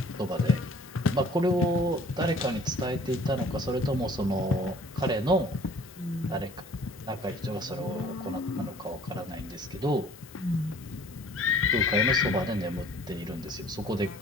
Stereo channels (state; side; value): normal; both; correlation 0.52